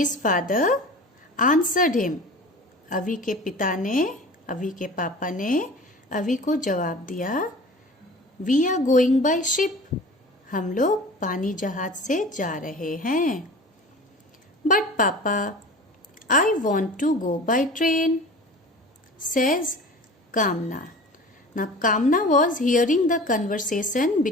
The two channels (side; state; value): both; normal; correlation 0.39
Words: father answered him. अवी के पिता ने, अवी के पापा ने अवी को जवाब दिया, we are going by ship. हम लोग पानी जहाज से जा रहे हैं. बट पापा, I want to go by train, says Kamna. Now Kamna was hearing the conversation